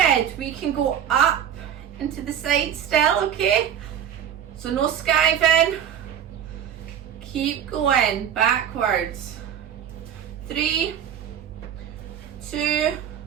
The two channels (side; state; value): left; quieter; 9.3 dB